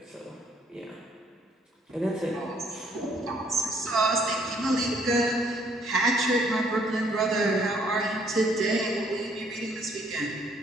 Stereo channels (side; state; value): both; normal; correlation 0.65